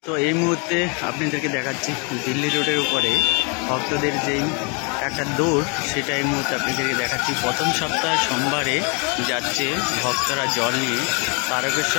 তো এই মুহূর্তে আপনাদেরকে দেখাচ্ছি দিল্লি রোডের উপরে ভক্তদের যেই একটা দৌড়, সেটা এই মুহূর্তে আপনাদেরকে দেখাচ্ছি। প্রথম সপ্তাহ সোমবারে যাচ্ছে ভক্তরা জল নিয়ে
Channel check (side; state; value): right; quieter; 34.3 dB